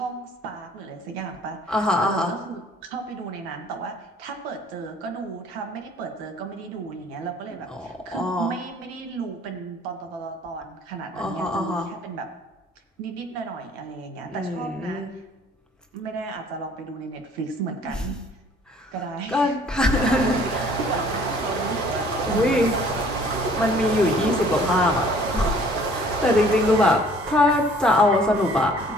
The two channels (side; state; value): both; normal; correlation 0.55